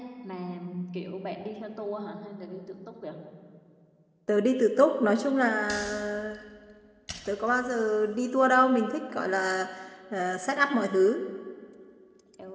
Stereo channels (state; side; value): identical; both; correlation 1.00